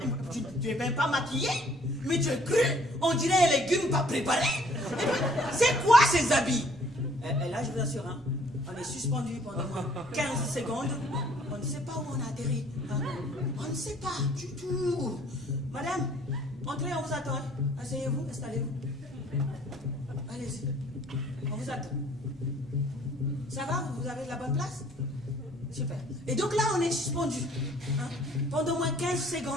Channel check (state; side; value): normal; both; correlation 0.58